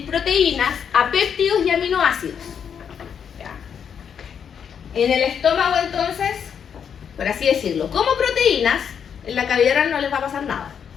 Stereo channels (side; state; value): right; quieter; 7.6 dB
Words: proteínas, apéptidos y aminoácidos. ¿Ya? En el estómago entonces, por así decirlo, como proteínas, en la cavidad oral no les va a pasar nada.